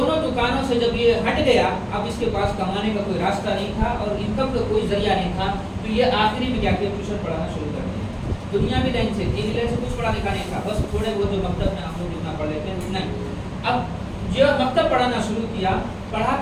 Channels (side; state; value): both; identical; correlation 1.00